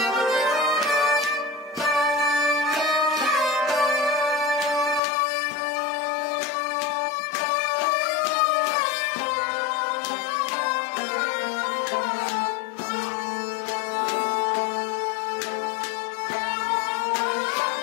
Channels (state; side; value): drops out; right; at 5.0 s